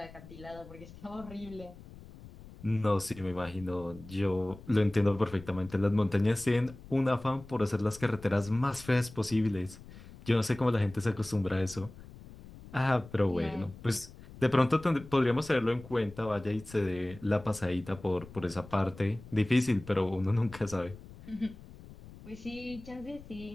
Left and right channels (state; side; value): noise; left; rumble, 18 dB below the sound